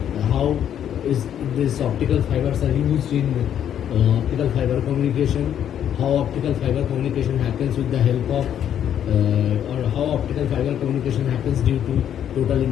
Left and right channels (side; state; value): right; quieter; 9.7 dB